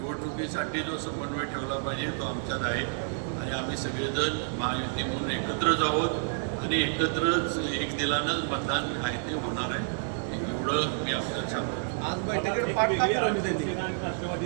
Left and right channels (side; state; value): left; silent; digital silence